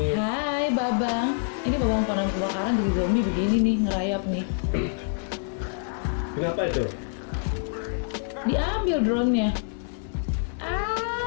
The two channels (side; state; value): right; silent; digital silence